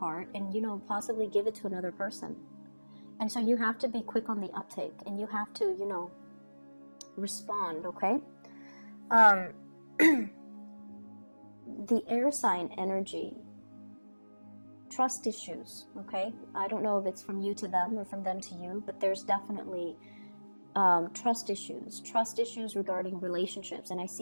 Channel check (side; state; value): both; inverted; correlation -1.00